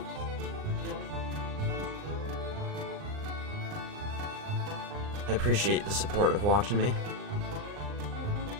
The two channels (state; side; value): late; left; 39 ms